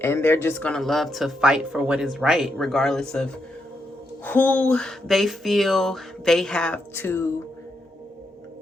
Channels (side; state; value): both; normal; correlation 0.82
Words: and they're just going to love to fight for what is right, regardless of who they feel they have to